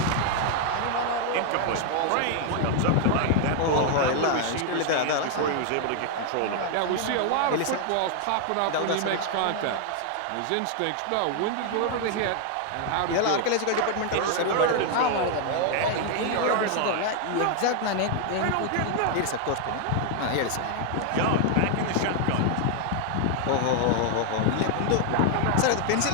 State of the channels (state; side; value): different; both; correlation 0.00